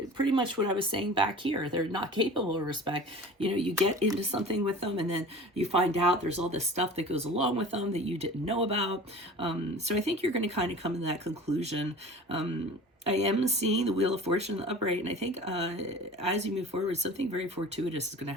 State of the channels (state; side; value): normal; both; correlation 0.39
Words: pretty much what I was saying back here. They're not capable of respect. You know, you get into something with them and then you find out there's all this stuff that goes along with them that you didn't know about. So I think you're going to kind of come to that conclusion. I am seeing the Wheel of Fortune in the upright, and I think as you move forward, something very fortuitous is going